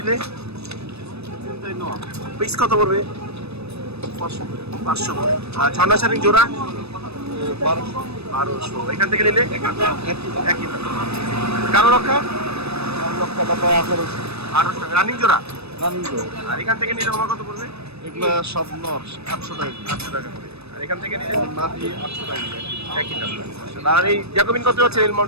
পিস কত পড়বে? 500 করে। আর ছন্না শাড়ি জোড়া 1200। এখান থেকে নিলে একই দাম। কালো লক্ষা 1800 টাকা রানিং জোড়া। আর এখান থেকে নিলে আমার কত পড়বে? এগুলো সব নর 800 টাকা। 800 টাকা করে। আর এখান থেকে নিলে মাটি 800 টাকা। একই দাম। আর এই জ্যাকোবিন কত যাচ্ছে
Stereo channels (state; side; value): late; left; 0.79 ms